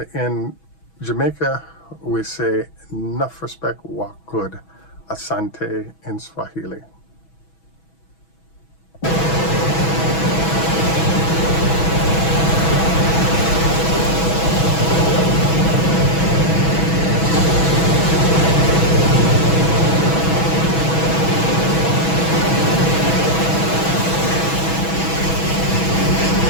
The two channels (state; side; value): late; right; 6.1 ms